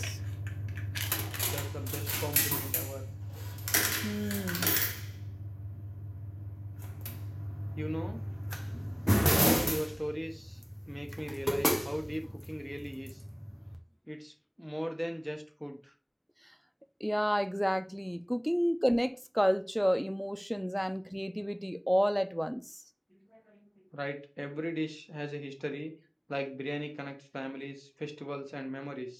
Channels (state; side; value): identical; both; correlation 1.00